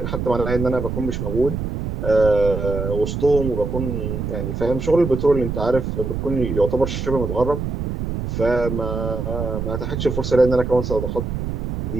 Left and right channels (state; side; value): noise; right; rumble, 3 dB below the sound